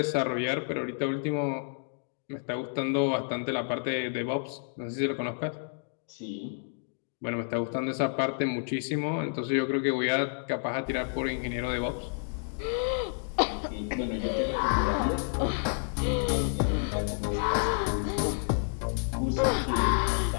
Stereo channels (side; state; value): right; silent; digital silence